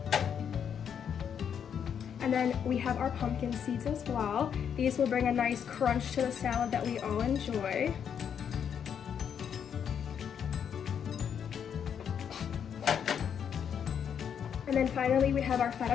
And then we have our pumpkin seeds as well. These will bring a nice crunch to the salad that we all enjoy. And then finally we have our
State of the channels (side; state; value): right; quieter; 8.0 dB